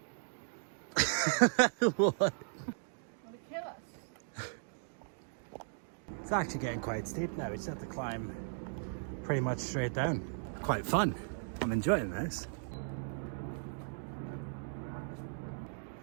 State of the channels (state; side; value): silent; left; digital silence